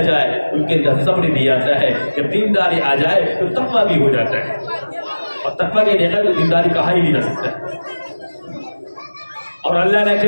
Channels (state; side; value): inverted; both; correlation -1.00